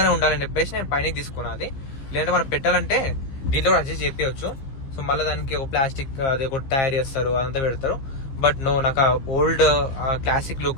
ఉండాలని చెప్పేసి నేను పైన తీసుకున్నా. అది లేదంటే మనం పెట్టాలంటే దీంట్లో కూడా అడ్జస్ట్ చేపించవచ్చు. సో మళ్ళీ దానికి ఒక ప్లాస్టిక్ అది ఒక తయారు చేస్తారు, అదంతా పెడతారు. బట్ నో, నాకు old classic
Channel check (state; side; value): late; right; 15 ms